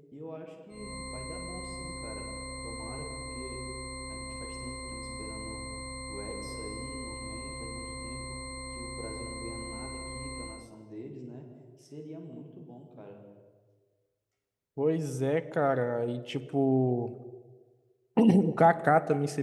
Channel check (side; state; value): both; identical; correlation 1.00